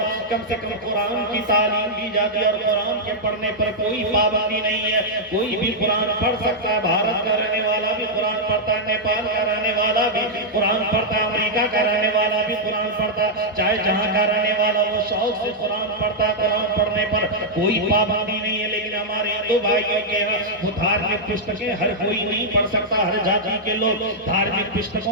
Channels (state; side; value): normal; both; correlation -0.06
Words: کم سے کم قرآن کی تعلیم دی جاتی ہے اور قرآن کے پڑھنے پر کوئی پابندی نہیں ہے. کوئی بھی قرآن پڑھ سکتا ہے, بھارت کا رہنے والا بھی قرآن پڑھتا ہے, نیپال کا رہنے والا بھی قرآن پڑھتا ہے, امریکہ کا رہنے والا بھی قرآن پڑھتا ہے, چاہے جہاں کا رہنے والا وہ شوق سے قرآن پڑھتا ہے. قرآن پڑھنے پر کوئی پابندی نہیں ہے, لیکن ہمارے ہندو بھائیوں کے وہ دھارمک پستکیں ہر کوئی نہیں پڑھ سکتا, ہر جاتی کے لوگ دھارمک